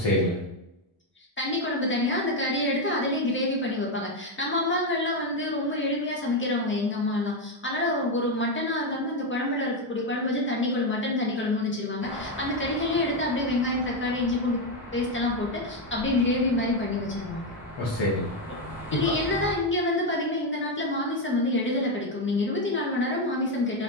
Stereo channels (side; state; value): both; normal; correlation 0.06